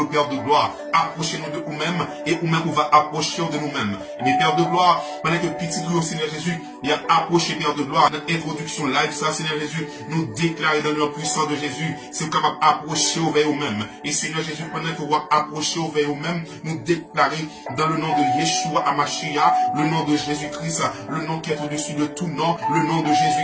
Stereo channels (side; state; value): both; identical; correlation 1.00